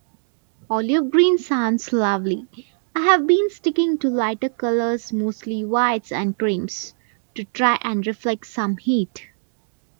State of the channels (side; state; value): left; silent; digital silence